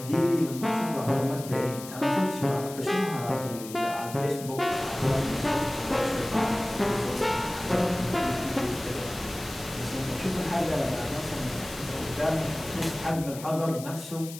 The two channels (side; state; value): left; noise; hiss, 13 dB below the sound